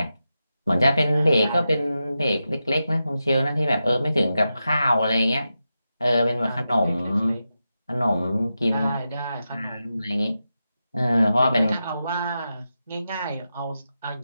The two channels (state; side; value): inverted; both; correlation -0.89